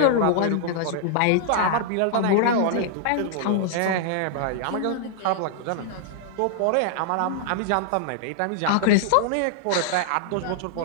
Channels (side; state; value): both; different; correlation -0.01